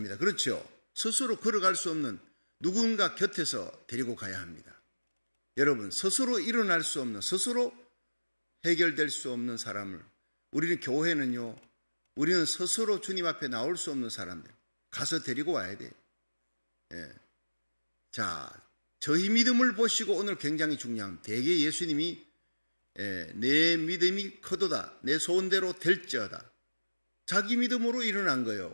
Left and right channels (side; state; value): both; inverted; correlation -1.00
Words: 그렇죠? 스스로 걸어갈 수 없는 누군가 곁에서 데리고 가야 합니다. 여러분, 스스로 일어날 수 없는, 스스로 해결될 수 없는 사람을, 우리는 교회는요, 우리는 스스로 주님 앞에 나올 수 없는 사람들 가서 데리고 와야 돼요. 자, 저희 믿음을 보시고 오늘 굉장히 중요한, 대개 예수님이 내 믿음이 커도다 내 소원대로 될지어다. 자기 믿음으로 일어난